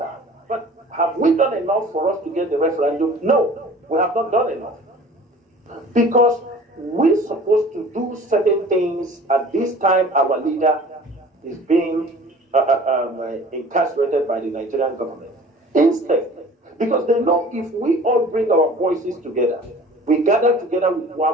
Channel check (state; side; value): normal; both; correlation 0.46